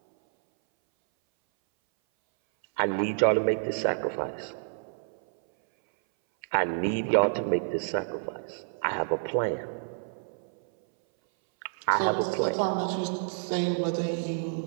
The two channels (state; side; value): silent; left; 59 dB below the other